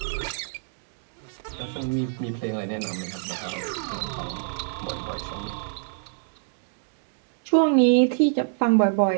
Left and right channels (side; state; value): left; silent; digital silence